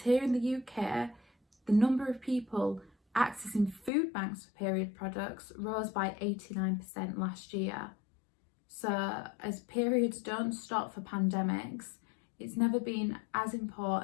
here in the UK, the number of people accessing food banks for period products rose by 89% last year. So as periods don't stop for pandemics, it's never been as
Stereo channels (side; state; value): right; drops out; at 3.9 s